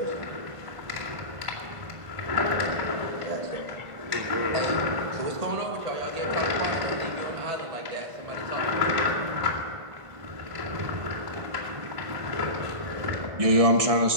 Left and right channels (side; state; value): left; late; 1.5 ms